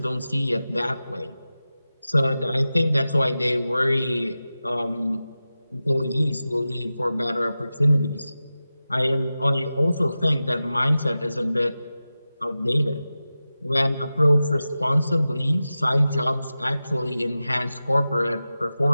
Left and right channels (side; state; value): both; inverted; correlation -0.94